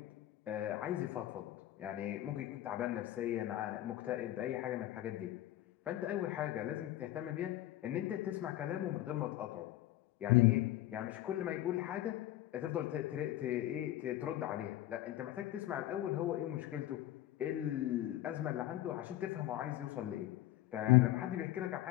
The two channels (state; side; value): quieter; right; 14.5 dB